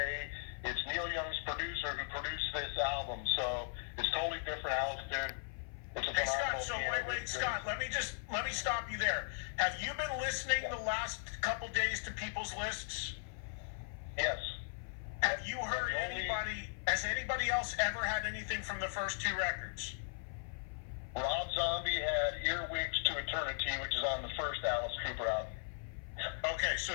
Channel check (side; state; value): right; silent; 52 dB below the other